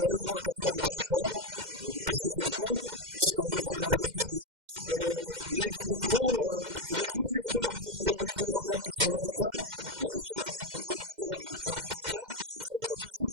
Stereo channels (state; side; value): late; left; 2.1 ms